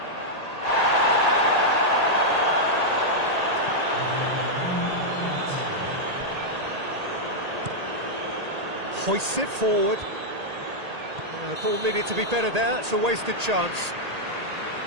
Hoists it forward. The ball needed to be better there. It's a wasted chance.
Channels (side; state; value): left; late; 1.8 ms